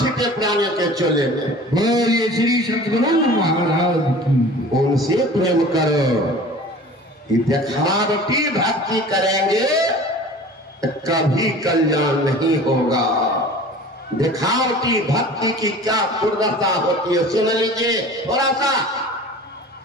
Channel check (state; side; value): normal; both; correlation 0.42